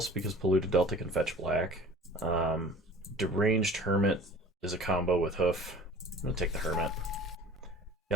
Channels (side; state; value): both; normal; correlation 0.46